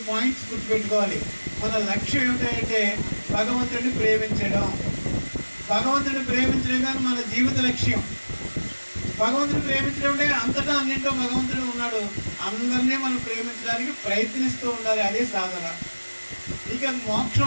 పాయింట్స్ గుర్తుపెట్టుకోవాలి. మన లక్ష్యం ఏమిటంటే భగవంతుడిని ప్రేమించడం. భగవంతుడిని ప్రేమించడం కానీ మన జీవిత లక్ష్యం. భగవంతుని ప్రేమించడం అంటే అంతటా అన్నింటో భగవంతుడు ఉన్నాడు. అందరినీ మనం ప్రేమించడానికి ప్రయత్నిస్తూ ఉండాలి. అదే సాధన. ఇక మోక్షం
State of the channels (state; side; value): inverted; both; correlation -1.00